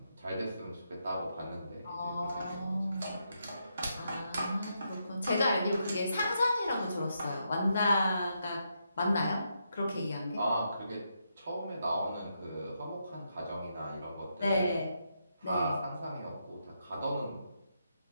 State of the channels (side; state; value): both; inverted; correlation -0.81